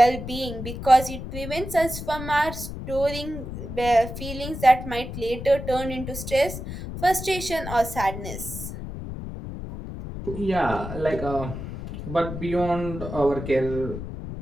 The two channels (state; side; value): noise; left; rumble, 8 dB below the sound